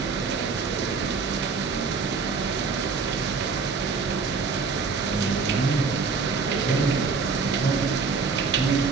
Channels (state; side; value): quieter; left; 4.8 dB